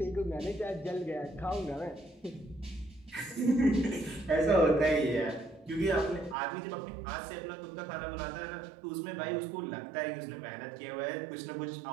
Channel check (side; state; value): left; drops out; at 6.4 s